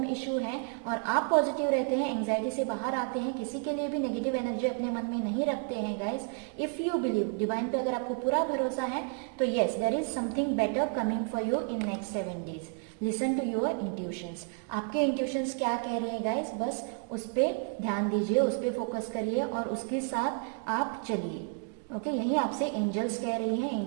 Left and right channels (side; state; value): left; quieter; 39.4 dB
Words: इशू है, और आप पॉजिटिव रहते हैं, एंग्जाइटी से बाहर आते हैं, किसी के लिए भी नेगेटिव एनर्जी अपने मन में नहीं रखते हैं guys, if you believe, divine पे अगर आपको पूरा भरोसा है, तो yes there is something better coming for you in next 7 days। Listen to your intuitions, आपके इंट्यूशंस क्या कह रहे हैं गाइस, बस उस पर ध्यान दीजिए, उस पर फोकस करिए और उसके साथ आप चलिए। ओके, यही आपसे एंजल्स कह रही हैं,